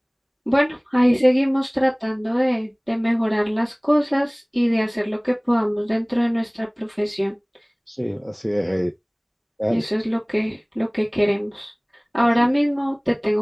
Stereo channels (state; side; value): identical; both; correlation 1.00